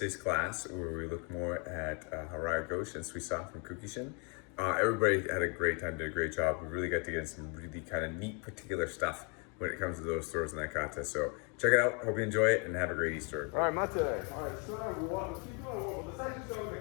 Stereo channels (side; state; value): right; quieter; 35.2 dB